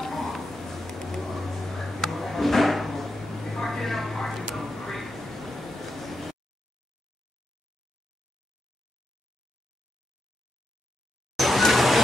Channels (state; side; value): normal; both; correlation 0.85